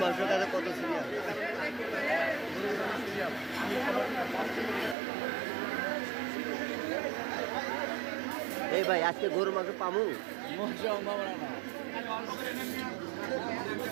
মাংসটা কত সিরিয়াল। এই ভাই আজকে গরুর মাংস পামু?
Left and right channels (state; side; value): drops out; left; at 5.0 s